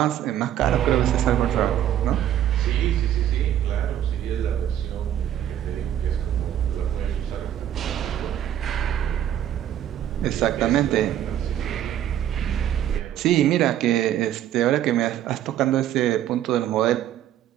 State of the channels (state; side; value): quieter; left; 11.2 dB